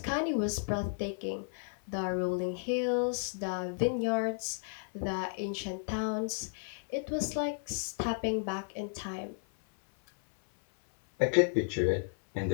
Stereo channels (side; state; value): right; silent; 56 dB below the other